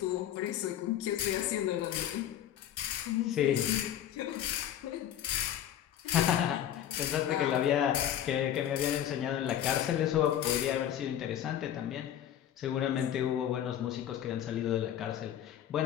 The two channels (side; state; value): right; quieter; 10.8 dB